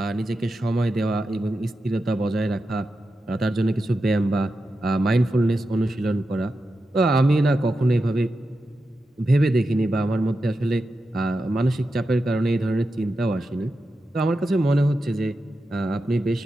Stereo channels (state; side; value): normal; both; correlation 0.90